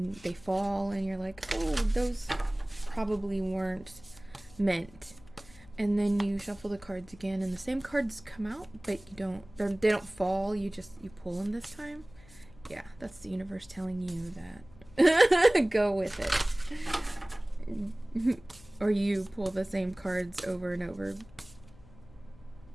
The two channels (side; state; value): left; noise; hum, 23 dB below the sound